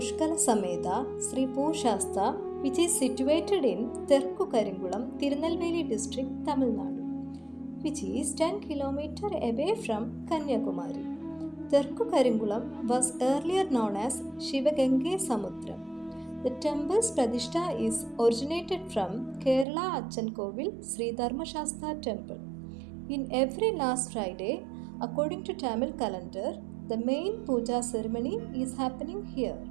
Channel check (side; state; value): left; drops out; at 19.7 s